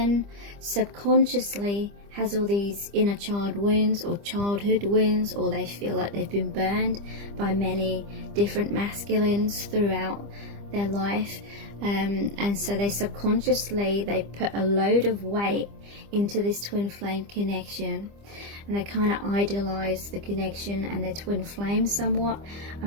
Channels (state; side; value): late; left; 25 ms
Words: subconsciously has all these inner child wounds or childhood wounds, or they feel like they've been burned by many different masculines throughout their life. And so they subconsciously, they put a load of weight into this twin flame connection, and they kind of idolize the connection and their twin flame somewhat.